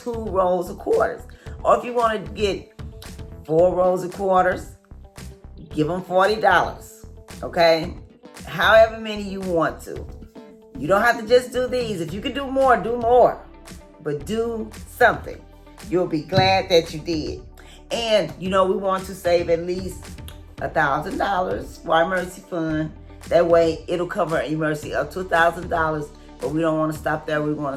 rolls of quarters? Or if you want to get 4 rolls of quarters, give them $40. Okay? However many you want to. You don't have to just do these. If you can do more, do more. But do something. You'll be glad that you did. And, we want to save at least $1,000 for our emergency fund. That way, it'll cover an emergency up to $1,000. But we don't want to stop there. We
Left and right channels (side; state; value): both; identical; correlation 1.00